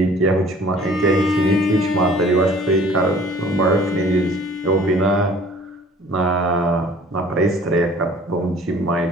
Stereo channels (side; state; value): both; normal; correlation 0.51